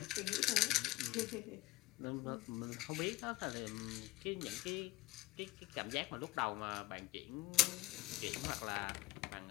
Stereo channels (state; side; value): quieter; right; 18.6 dB